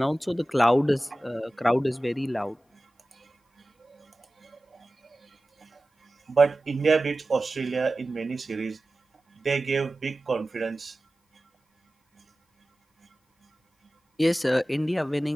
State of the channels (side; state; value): both; normal; correlation 0.96